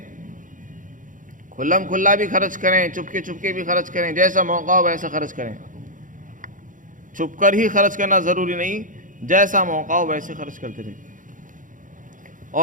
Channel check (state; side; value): late; left; 0.38 ms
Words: کھلم کھلا بھی خرچ کریں، چپکے چپکے بھی خرچ کریں، جیسا موقع ہو ویسا خرچ کریں۔ چھپ کر ہی خرچ کرنا ضروری نہیں، جیسا موقع ہو ویسے خرچ کرتے رہیں،